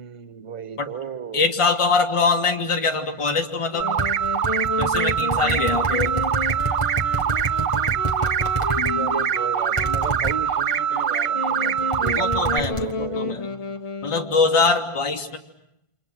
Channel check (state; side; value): late; right; 1.5 ms